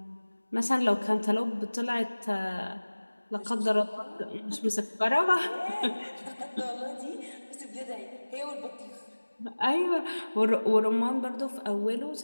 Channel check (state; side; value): inverted; both; correlation -1.00